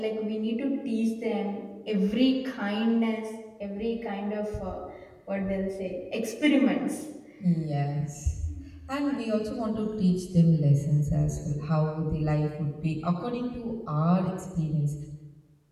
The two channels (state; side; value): identical; both; correlation 1.00